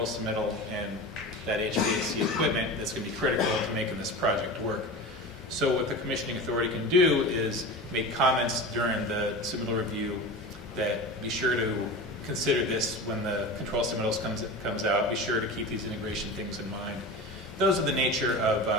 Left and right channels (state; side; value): normal; both; correlation 0.30